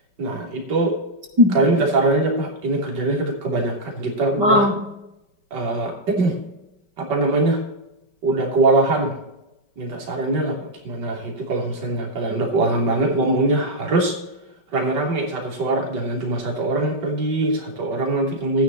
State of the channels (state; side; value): late; left; 5.2 ms